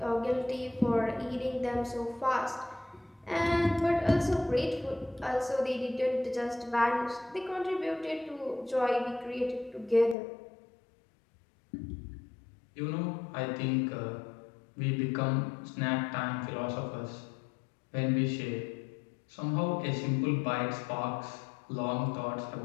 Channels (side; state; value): right; drops out; at 10.2 s